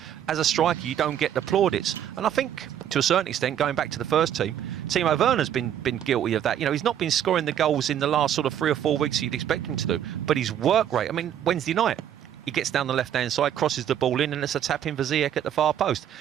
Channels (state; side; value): quieter; left; 10.2 dB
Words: as a striker, you don't get the plaudits. And I think, to a certain extent, going back to the first team, Timo Werner's been guilty of that. You know, he's not been scoring the goals in the last sort of 3 or 4 weeks you'd expect him to do. But his work rate, I mean, Wednesday night, he gets down the left-hand side, crosses the ball in, and it's a tap in for Ziyech at the far post.